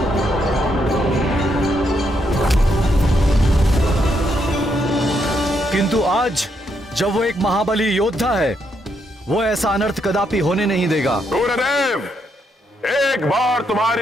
किंतु आज जब वो एक महाबली योद्धा है, वो ऐसा अनर्थ कदापि होने नहीं देगा। सूर्यदेव, एक बार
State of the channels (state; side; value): normal; both; correlation 0.77